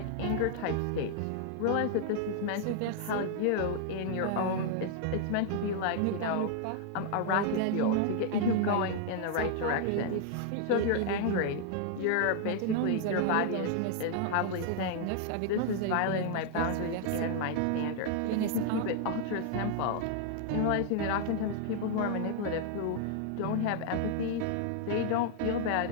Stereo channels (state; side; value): different; both; correlation 0.00